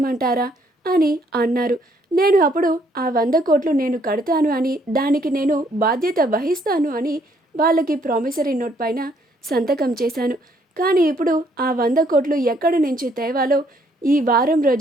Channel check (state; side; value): normal; both; correlation 0.67